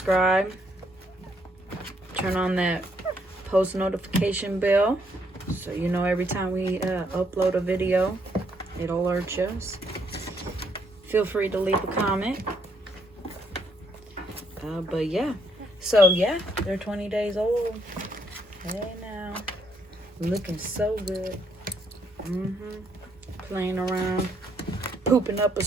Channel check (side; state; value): both; normal; correlation 0.72